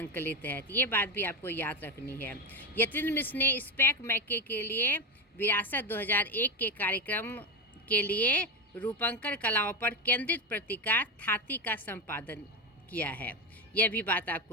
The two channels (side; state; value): both; normal; correlation 0.14